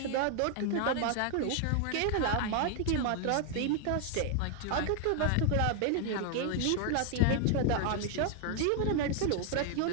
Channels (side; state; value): both; different; correlation 0.00